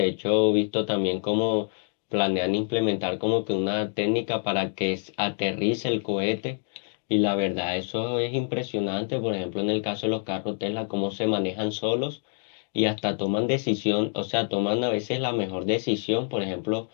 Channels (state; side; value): silent; right; 58 dB below the other